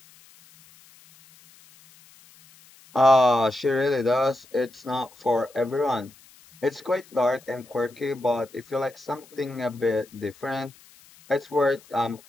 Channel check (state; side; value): noise; left; hiss, 26 dB below the sound